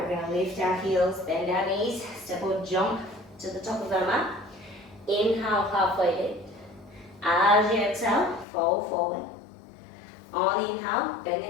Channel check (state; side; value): drops out; right; at 8.5 s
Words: we're going to lift our heels, bend our knees, step or jump to the top of our mat. Inhale, halfway lift. As you exhale, fold forward. On the inhale, bend